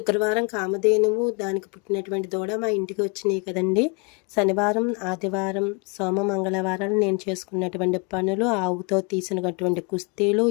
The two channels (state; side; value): quieter; right; 32.3 dB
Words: కామధేనువు దానికి పుట్టినటువంటి దూడ మా ఇంటికి వచ్చినాయి కదండి. శనివారం, ఆదివారం, సోమ, మంగళవారాలు నేను చేసుకున్నటువంటి పనులు, ఆవుతో తీసినటువంటి కుస్తీలు,